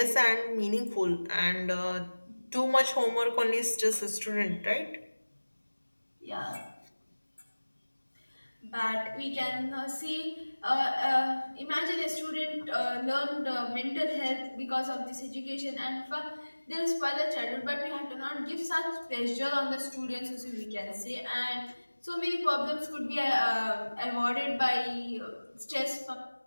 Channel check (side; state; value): both; inverted; correlation -1.00